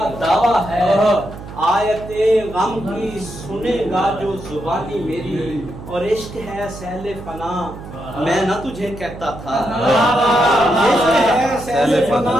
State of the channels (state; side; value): noise; right; hum, 13 dB below the sound